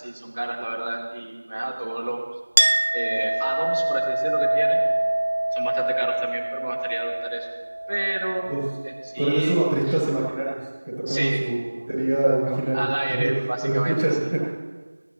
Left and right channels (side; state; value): both; inverted; correlation -1.00